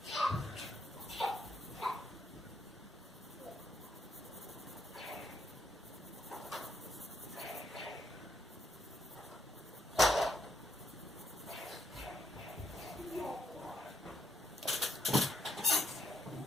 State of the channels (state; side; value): normal; both; correlation 0.76